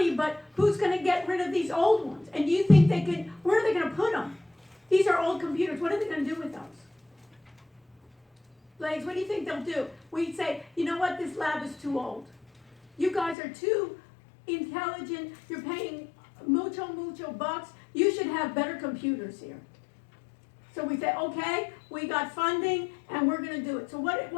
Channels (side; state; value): right; drops out; at 13.4 s